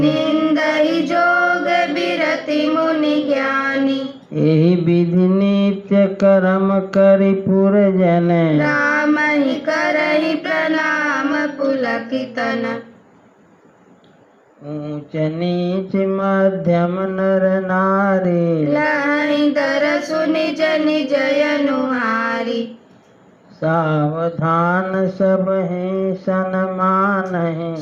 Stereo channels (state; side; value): identical; both; correlation 1.00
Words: जोग बिरति मुनि ज्ञानी एहि विधि नित्य कर्म करि पुरजन राम ही करहि प्रणाम पुलकितन ऊंच नीच मध्यम नर नारी लहि दर सुनि जनि जयनुहारी सावधान सब हैं सन्मान है